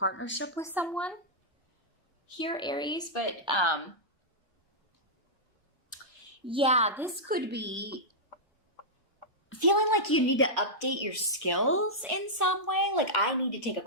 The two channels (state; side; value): normal; both; correlation -0.10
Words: with someone here, Aries. But yeah, this could be feeling like you need to update your skills in some way. Like, I need to take a